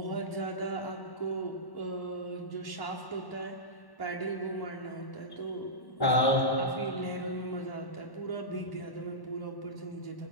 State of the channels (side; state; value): right; late; 1.1 ms